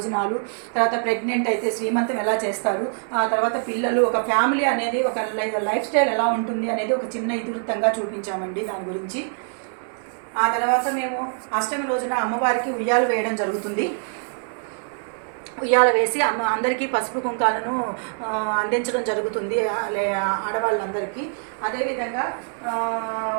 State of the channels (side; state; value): left; silent; 56 dB below the other